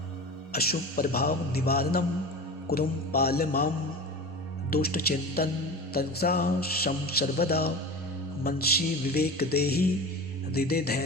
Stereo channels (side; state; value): both; normal; correlation 0.31